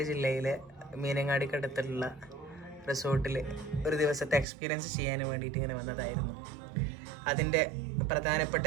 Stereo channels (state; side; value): drops out; left; at 4.5 s